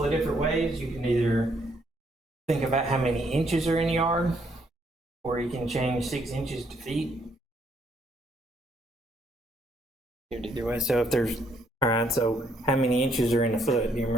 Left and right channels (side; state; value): both; normal; correlation 0.70